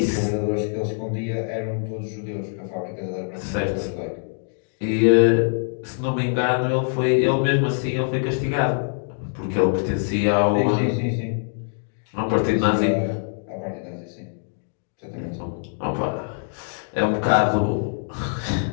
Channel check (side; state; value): right; silent; digital silence